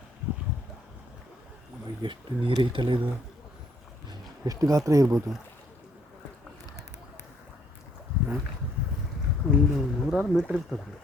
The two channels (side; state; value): both; normal; correlation 0.67